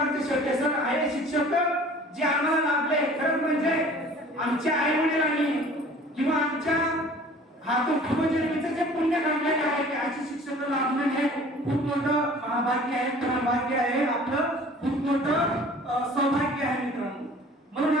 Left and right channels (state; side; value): normal; both; correlation 0.48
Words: शेवटे सर आहे शिक्षक जे आम्हाला लाभले. खरं म्हणजे आमच्या आई वडिलांनी किंवा आमच्या हातून पूर्वजन्मीचं जे पुण्य काढलेले आहे ते अशी शिक्षक लाभणं हे खूप मोठं भाग्य आहे, भाग्य आहे, आपलं खूप मोठं सौभाग्य आहे मित्रांनो. म्हणून